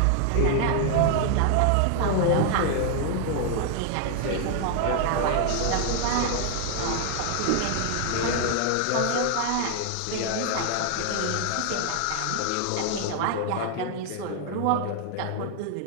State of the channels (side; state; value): both; different; correlation 0.00